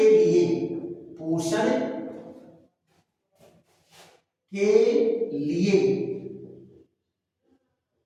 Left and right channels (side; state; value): both; identical; correlation 1.00